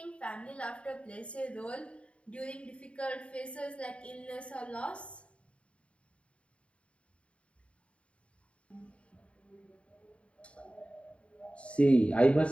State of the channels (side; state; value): right; late; 0.061 ms